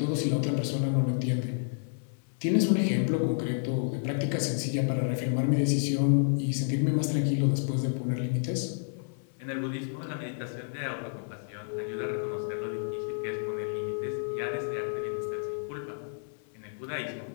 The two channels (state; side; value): silent; right; 58 dB below the other